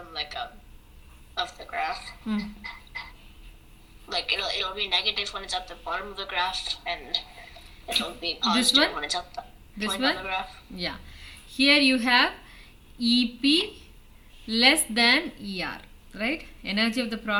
of the graph, like it'll be negative when it's at the bottom of the graph, and it'll be positive when it's at the point of the graph. Yeah. Here you have EP less than ER, right? Energy of the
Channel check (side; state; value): both; identical; correlation 1.00